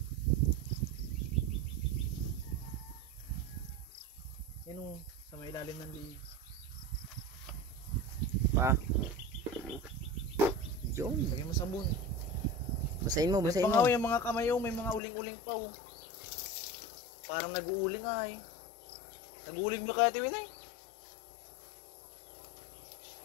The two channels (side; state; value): right; drops out; at 15.0 s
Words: Yan o, sa may ilalim ng liig. Paa. Yun. Lagyan mo sabon. Basahin mo, basahin mo. Pangaw yung mga kamay o, may mga uling-uling pa o. Parang nag-uuling ay. Nag-uuling ba kaya Tiwinay?